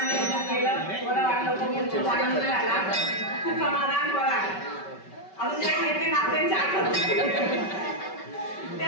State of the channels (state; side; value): late; right; 5.2 ms